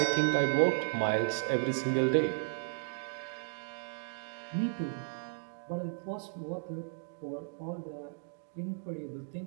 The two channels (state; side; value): silent; left; digital silence